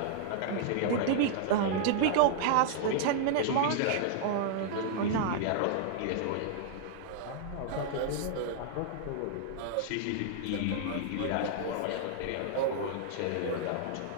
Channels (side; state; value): both; different; correlation -0.01